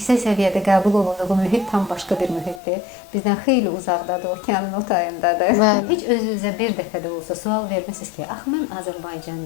səviyyədə qəbul olunduğu mühit tam başqa bir mühitdir. Bizdən xeyli uzaqdadır, okeanın o tayındadır. Heç özünüzə bir dəfə də olsa sual vermisiniz ki, ax mən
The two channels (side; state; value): right; drops out; at 2.6 s